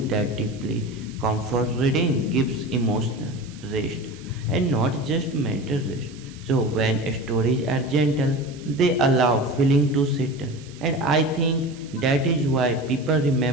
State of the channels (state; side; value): noise; right; hiss, 22 dB below the sound